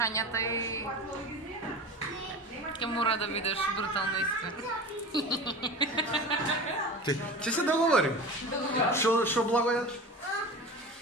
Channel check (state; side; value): normal; both; correlation 0.32